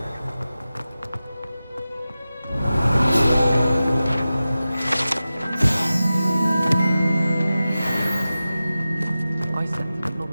I said it, not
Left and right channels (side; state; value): both; inverted; correlation -0.94